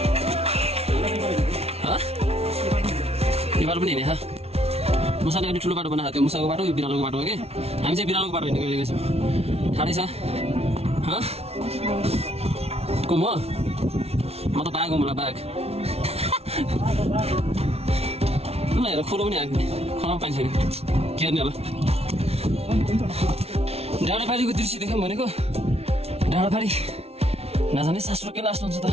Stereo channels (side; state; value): left; late; 0.30 ms